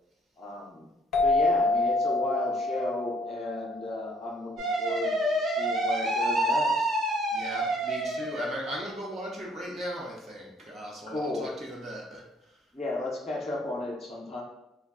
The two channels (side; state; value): both; normal; correlation 0.61